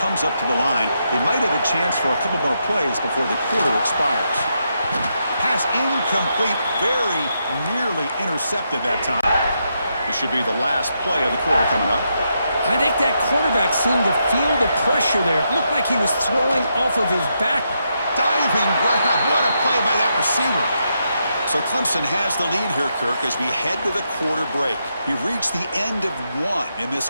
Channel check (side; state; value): both; inverted; correlation -0.81